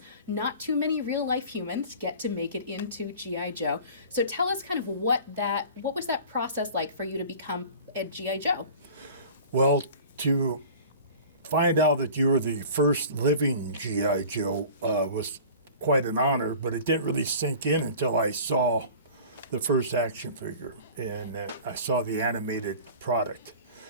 Not too many real-life humans get to make it into G.I. Joe. So tell us kind of what was that process like for you to become a G.I. Joe? Well, to find out that you were the first living G.I. Joe was quite an honor, but it didn't really sink in until I saw the first action figure and I saw the animated product.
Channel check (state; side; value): inverted; both; correlation -0.42